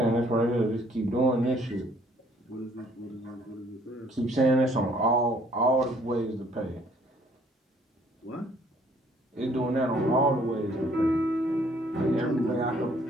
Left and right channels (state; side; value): normal; both; correlation 0.62